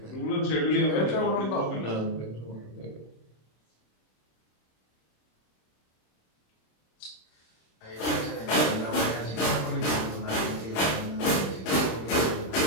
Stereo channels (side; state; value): right; late; 26 ms